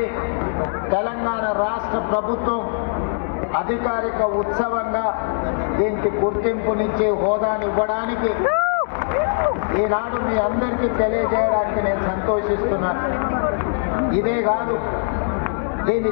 తెలంగాణ రాష్ట్ర ప్రభుత్వం అధికారిక ఉత్సవంగా దీనికి గుర్తింపునిచ్చి హోదాని ఇవ్వడానికి ఈనాడు మీ అందరికీ తెలియజేయడానికి నేను సంతోషిస్తున్నాను. ఇదే కాదు, దీన్ని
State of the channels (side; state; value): right; silent; 65 dB below the other